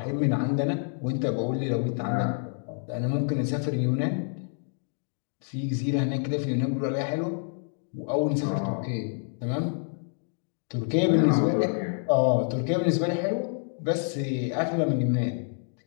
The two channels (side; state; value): right; silent; 59 dB below the other